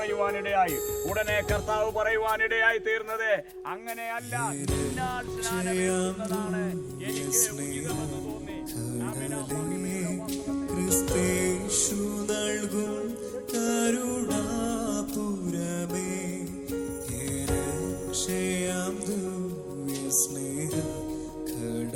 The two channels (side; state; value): both; identical; correlation 1.00